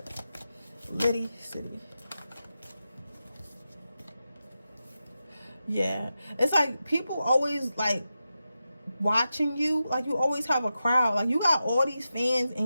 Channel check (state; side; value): inverted; both; correlation -0.91